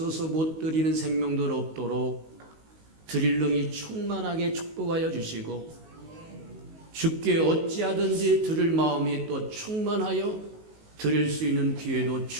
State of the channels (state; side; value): late; left; 19 ms